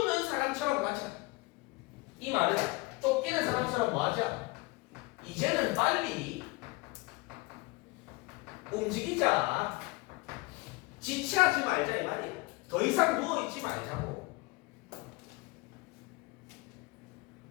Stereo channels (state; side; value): quieter; right; 24.1 dB